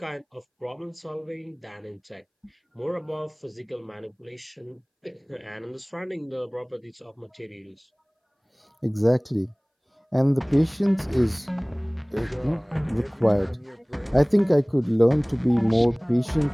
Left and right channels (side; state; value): both; identical; correlation 1.00